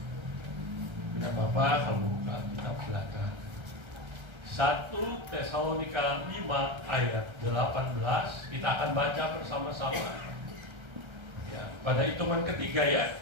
Tidak apa-apa kalau buka kitab silakan. 1 Tesalonika 5 ayat 18 kita akan baca bersama-sama. Ya, pada hitungan ketiga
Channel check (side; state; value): left; late; 1.3 ms